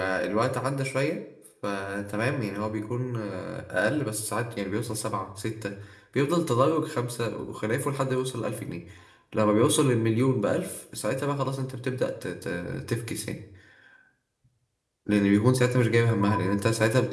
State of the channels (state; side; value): identical; both; correlation 1.00